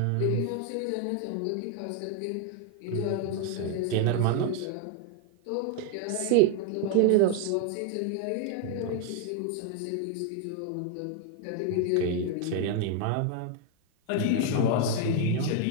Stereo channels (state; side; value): different; both; correlation 0.00